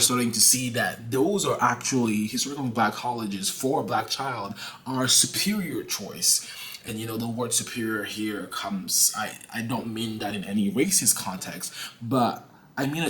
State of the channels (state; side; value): identical; both; correlation 1.00